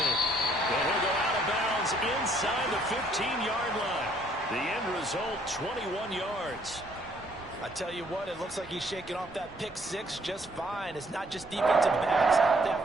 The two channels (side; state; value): both; normal; correlation 0.64